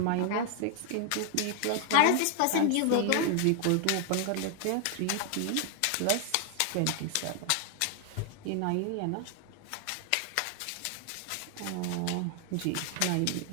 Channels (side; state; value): both; different; correlation 0.00